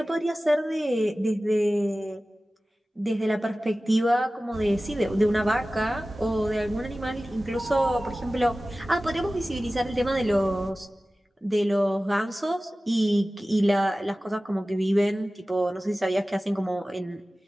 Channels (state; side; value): normal; both; correlation 0.96